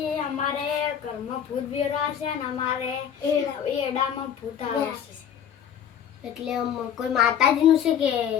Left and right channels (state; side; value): quieter; right; 8.9 dB